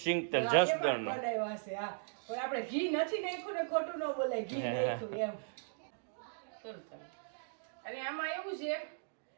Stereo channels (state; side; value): silent; left; digital silence